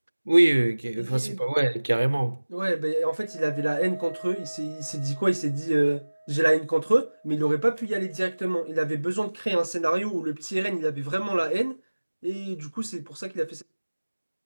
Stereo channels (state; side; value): inverted; both; correlation -1.00